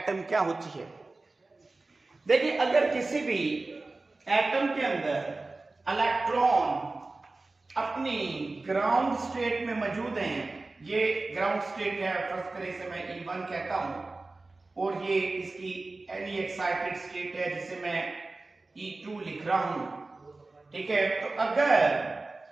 क्या होती है। देखिए, अगर किसी भी एटम के अंदर इलेक्ट्रॉन अपनी ग्राउंड स्टेट में मौजूद हैं, ये ग्राउंड स्टेट है, फर्स्ट करें इसे मैं E1 कहता हूं, और ये इसकी एनी एक्साइटेड स्टेट है जिसे मैं E2 लिख रहा हूं। ठीक है, तो अगर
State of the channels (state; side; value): quieter; left; 3.3 dB